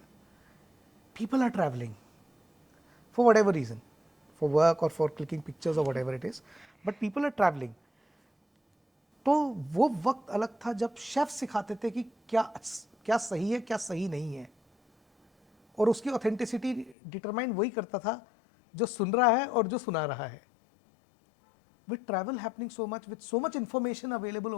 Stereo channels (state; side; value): drops out; right; at 16.9 s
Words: People are traveling for whatever reason, for work or for clicking pictures or whatever it is, but people are traveling. तो वो वक्त अलग था जब chef सिखाते थे कि क्या सही है, क्या सही नहीं है, और उसकी ऑथेंटिसिटी डिटरमाइन वही करता था जो सुन रहा है और जो सुना रहा है. With travel happening so much, with so much information available